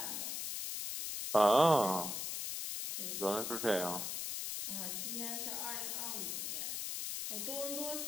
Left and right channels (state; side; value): noise; left; hiss, 3 dB below the sound